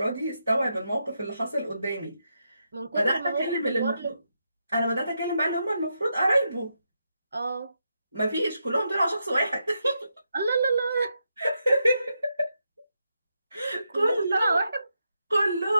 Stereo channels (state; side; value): inverted; both; correlation -0.83